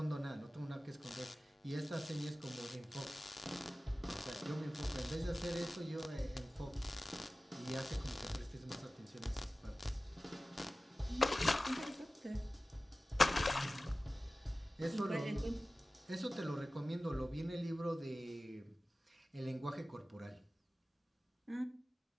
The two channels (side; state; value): both; normal; correlation 0.96